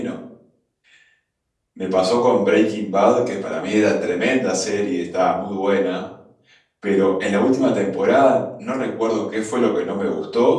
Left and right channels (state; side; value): identical; both; correlation 1.00